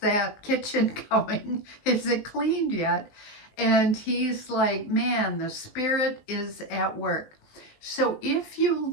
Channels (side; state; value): right; late; 19 ms